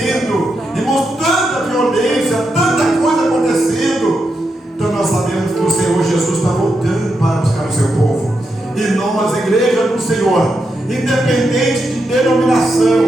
irmãos, tanta violência, tanta coisa acontecendo. Então nós sabemos que o Senhor Jesus está voltando para buscar o seu povo, e nós, igreja do Senhor, independente de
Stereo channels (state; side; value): normal; both; correlation 0.84